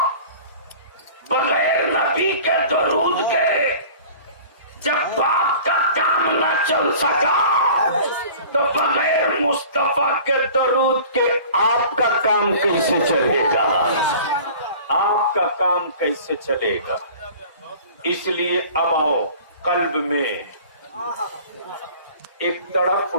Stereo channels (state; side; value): inverted; both; correlation -0.44